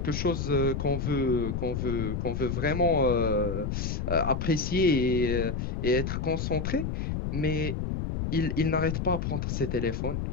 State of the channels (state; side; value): noise; left; rumble, 2 dB below the sound